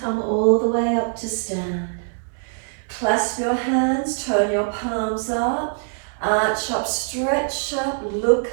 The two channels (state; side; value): silent; left; 61 dB below the other